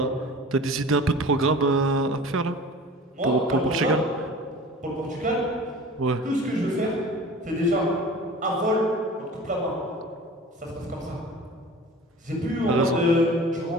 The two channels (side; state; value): both; normal; correlation 0.41